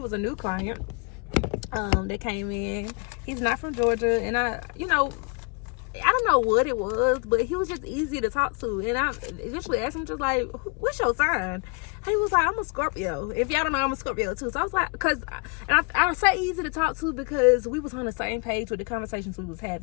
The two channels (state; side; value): quieter; right; 34.9 dB